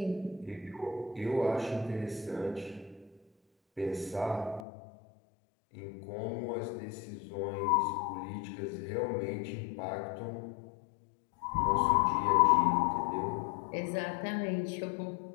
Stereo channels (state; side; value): drops out; right; at 4.6 s